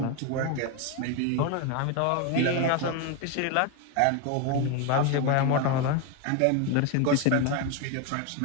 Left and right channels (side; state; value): both; different; correlation 0.02